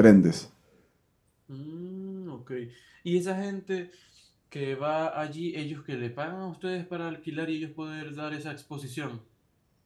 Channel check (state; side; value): identical; both; correlation 1.00